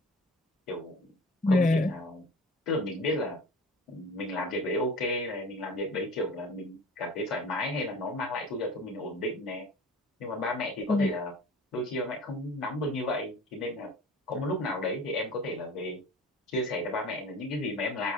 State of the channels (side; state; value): both; normal; correlation 0.41